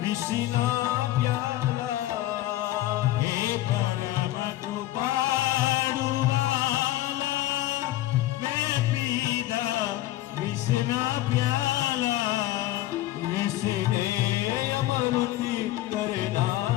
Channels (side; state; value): right; quieter; 15.3 dB